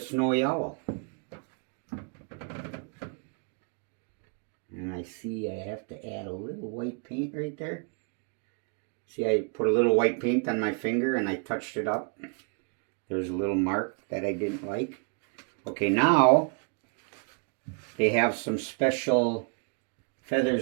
owl. And I see I have to add a little white paint right there. See, I put a little white paint on my finger and I touched it up. There's a little mark that I didn't like. Okay, now they have some special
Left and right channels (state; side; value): quieter; left; 39.4 dB